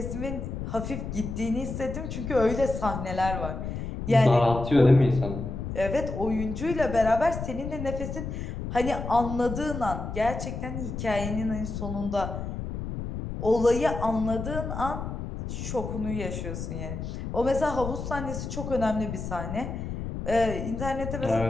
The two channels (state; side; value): noise; left; rumble, 6 dB below the sound